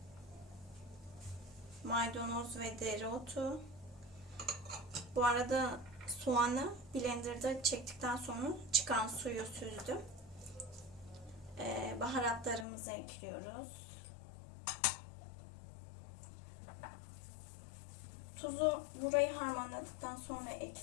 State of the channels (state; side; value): drops out; right; at 12.7 s